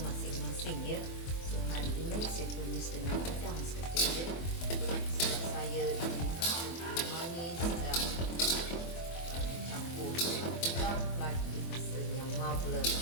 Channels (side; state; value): right; late; 24 ms